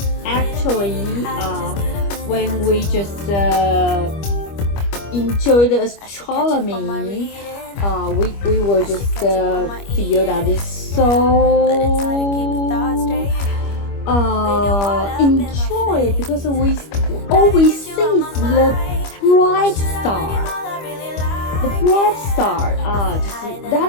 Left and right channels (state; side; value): late; right; 25 ms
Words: actually when we just enjoy the astronomy, we will just feel that it's so enjoy because we always see the bright star. The bright star, that